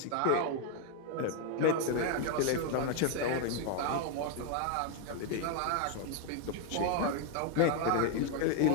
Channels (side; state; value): both; different; correlation 0.01